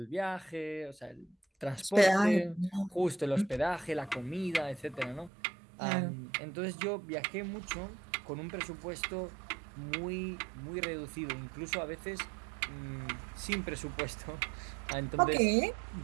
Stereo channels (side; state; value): left; drops out; at 5.3 s